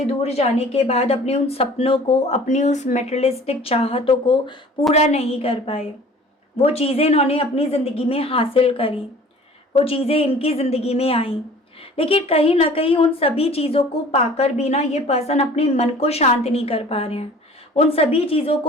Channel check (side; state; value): both; normal; correlation 0.47